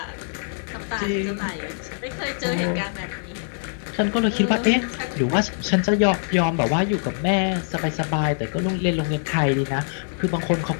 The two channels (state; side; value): silent; right; 63 dB below the other